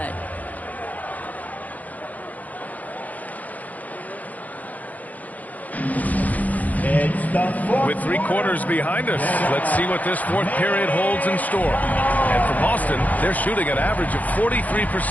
With 3 quarters behind us, let's see what this 4th period holds in store. And for Boston, they're shooting an average of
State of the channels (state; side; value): late; right; 0.077 ms